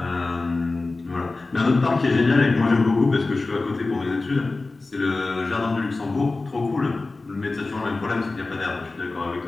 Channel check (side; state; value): right; quieter; 3.4 dB